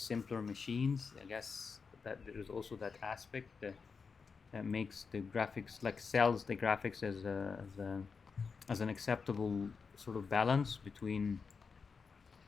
machines. I guess that there's also that aspect that makes the graphics, like sells the graphics as an acceptable sort of balance between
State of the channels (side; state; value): right; quieter; 5.3 dB